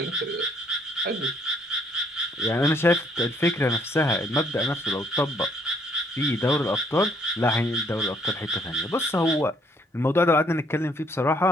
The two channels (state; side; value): normal; both; correlation 0.66